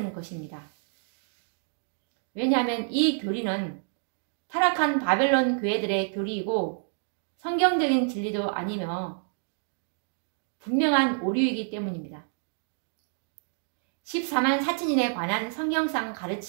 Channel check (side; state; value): left; silent; 58 dB below the other